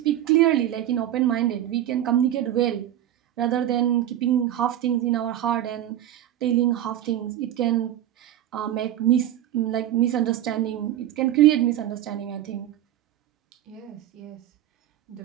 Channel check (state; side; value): quieter; left; 12.2 dB